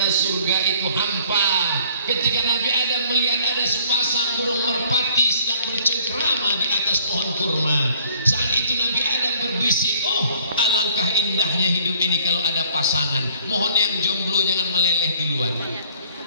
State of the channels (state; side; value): inverted; both; correlation -0.58